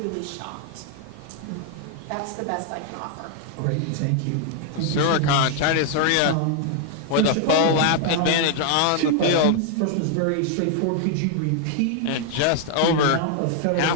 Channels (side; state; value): both; different; correlation 0.00